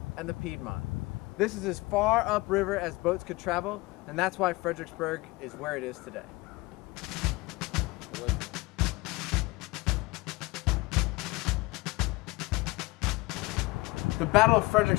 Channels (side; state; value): right; quieter; 22.5 dB